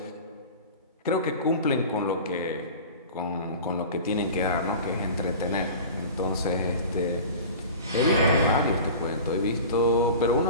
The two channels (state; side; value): inverted; both; correlation -0.37